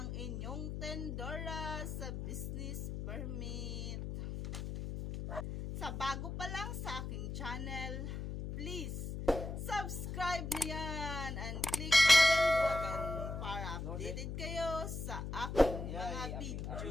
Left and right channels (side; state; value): left; noise; hum, 5 dB below the sound